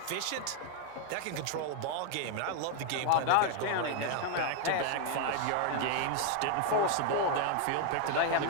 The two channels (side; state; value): both; different; correlation 0.00